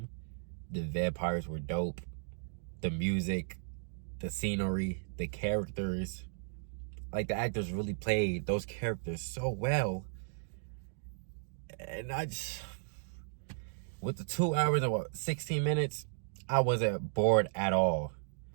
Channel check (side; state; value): left; silent; digital silence